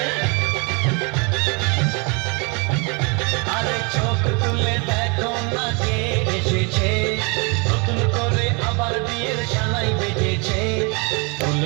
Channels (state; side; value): quieter; left; 32.1 dB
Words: আরে চোখ তুলে দেখো না কে এসেছে, নতুন করে আবার বিয়ের সানাই বেজেছে।